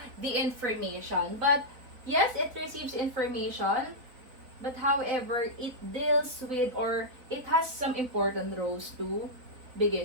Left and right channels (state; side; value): late; left; 4.0 ms